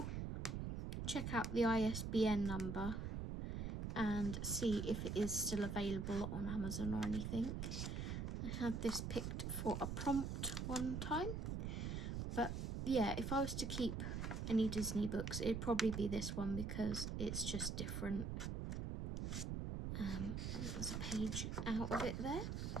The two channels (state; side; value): noise; right; rumble, 3 dB below the sound